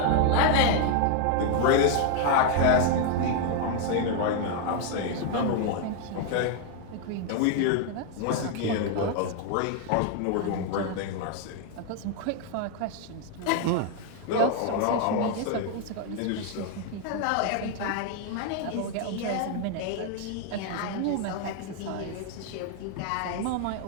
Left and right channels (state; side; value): different; both; correlation 0.01